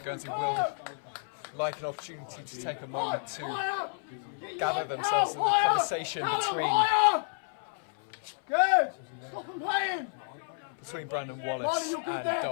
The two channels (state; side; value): silent; right; 57 dB below the other